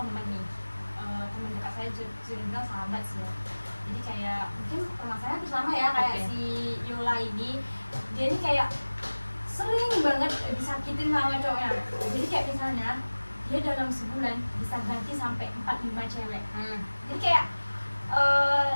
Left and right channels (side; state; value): both; inverted; correlation -1.00